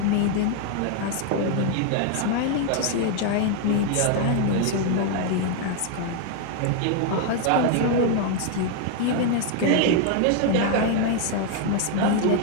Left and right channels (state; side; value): different; both; correlation 0.00